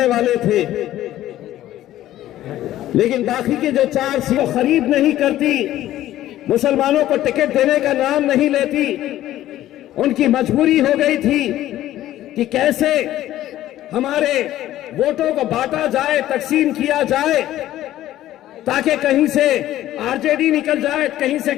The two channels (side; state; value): right; quieter; 13.7 dB